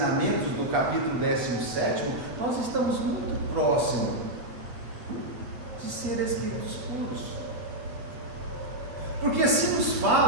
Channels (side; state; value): left; late; 8.1 ms